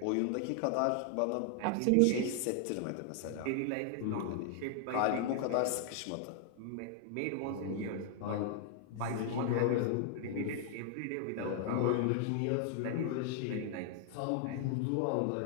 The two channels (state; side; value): different; both; correlation 0.00